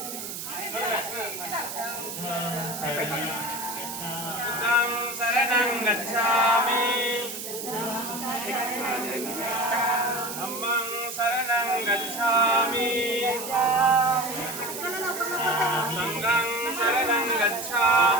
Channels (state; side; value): noise; right; hiss, 7 dB below the sound